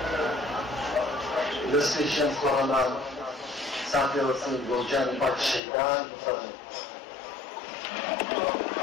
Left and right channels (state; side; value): drops out; right; at 5.6 s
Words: دستيشن كورونا ساعتي وصل بوجان باك الشيطان بفضل